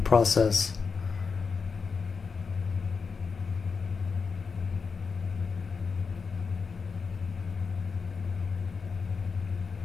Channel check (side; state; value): right; quieter; 5.2 dB